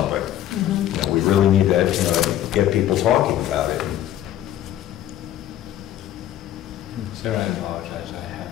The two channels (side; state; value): right; quieter; 12.1 dB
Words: We really need to, get people talking about it. Sarah, I apologize, I